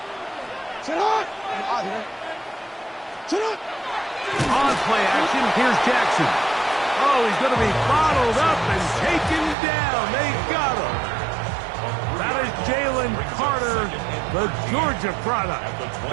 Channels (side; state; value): left; drops out; at 9.6 s